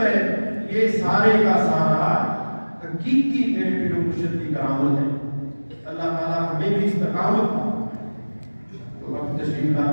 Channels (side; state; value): both; inverted; correlation -1.00